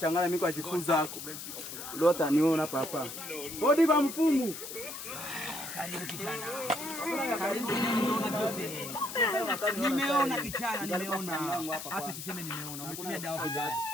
mimi kwa jifunza yako. Lota niona papa. Bodi kwa mfumu. Karibu kijana. Nimeona kijana, nimeona. Hata usiseme nimeona. Umetumia dawa vibaya.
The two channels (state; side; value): noise; left; hiss, 9 dB below the sound